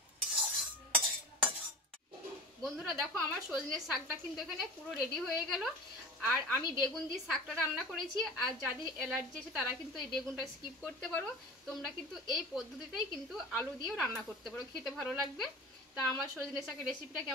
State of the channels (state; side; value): normal; both; correlation 0.35